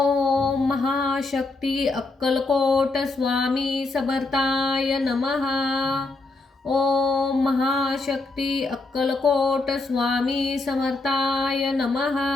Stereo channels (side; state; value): right; quieter; 3.3 dB